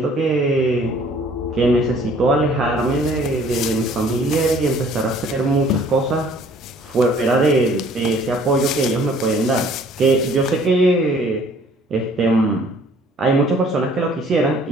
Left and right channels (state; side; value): normal; both; correlation 0.56